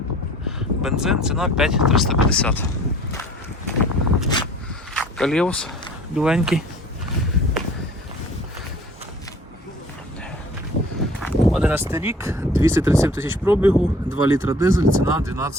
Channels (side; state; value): both; normal; correlation 0.50